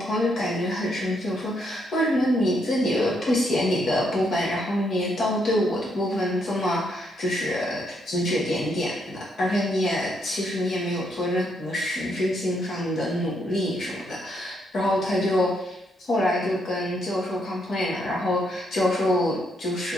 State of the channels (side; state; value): both; normal; correlation 0.75